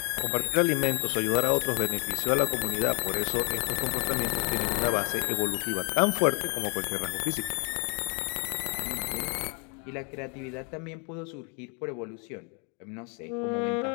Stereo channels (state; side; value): quieter; right; 36.5 dB